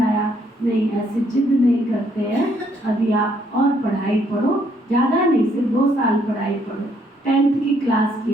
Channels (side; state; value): both; normal; correlation 0.69